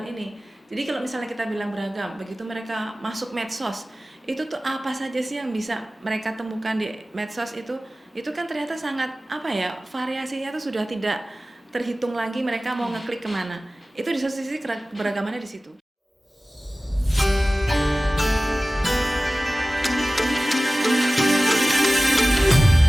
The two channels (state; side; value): normal; both; correlation 0.97